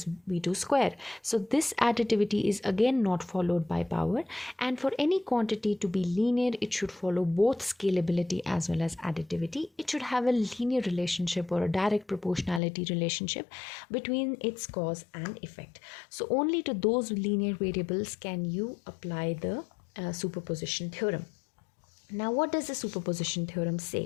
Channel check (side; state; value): right; drops out; at 12.6 s